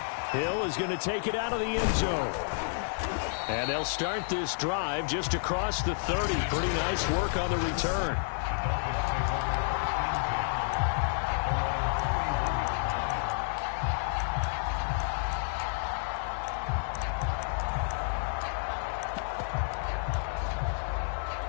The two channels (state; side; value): silent; right; 58 dB below the other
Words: Hill is going to take it out of the end zone. And they'll start this drive just across the 30. Pretty nice work on the return.